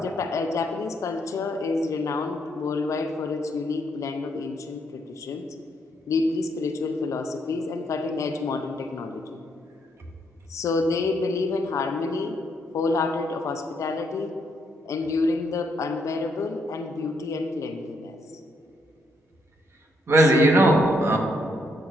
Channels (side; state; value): both; normal; correlation 0.74